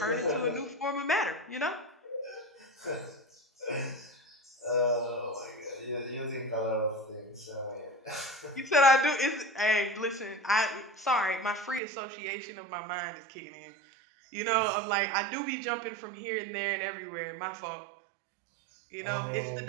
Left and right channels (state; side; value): drops out; left; at 11.8 s